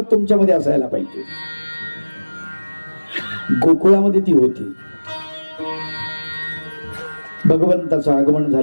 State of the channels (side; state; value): both; inverted; correlation -1.00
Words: तुमच्यामध्ये असायला पाहिजे. गोकुळामध्ये ती होती. भगवंताचं आगमन